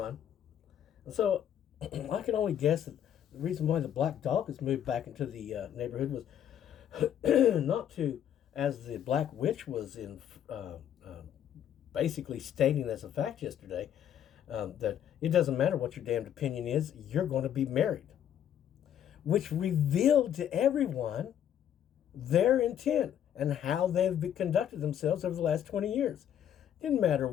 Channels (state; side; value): quieter; right; 10.0 dB